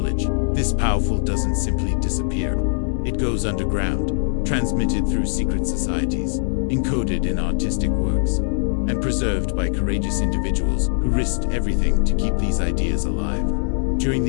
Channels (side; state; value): right; silent; 65 dB below the other